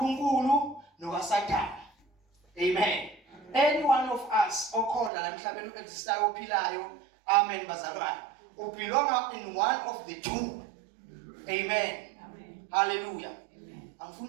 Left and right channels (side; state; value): left; drops out; at 5.1 s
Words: nokaSathane. Amen. Any one of us okhona la emhlabeni existayo ophilayo. Amen bazalwane. We belong in one of the two. Amen. Hallelujah.